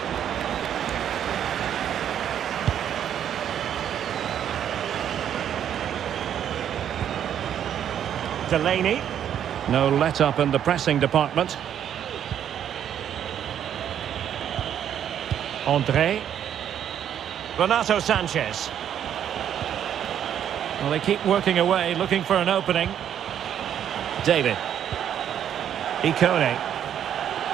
Delaney. No let-up in the pressing department. André. Renato Sanchez. Well, they keep working away, looking for an opening. David. Ikone.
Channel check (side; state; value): left; quieter; 9.7 dB